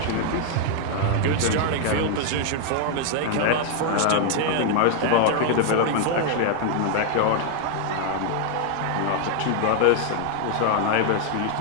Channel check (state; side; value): different; both; correlation 0.00